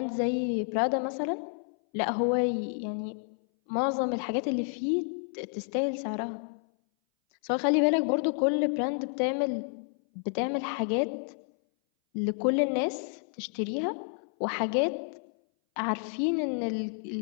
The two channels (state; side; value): silent; right; 58 dB below the other